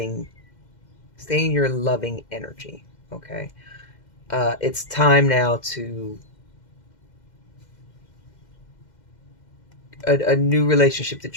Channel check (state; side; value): late; right; 2.1 ms